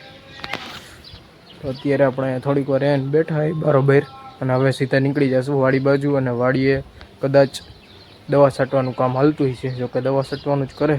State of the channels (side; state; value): both; identical; correlation 1.00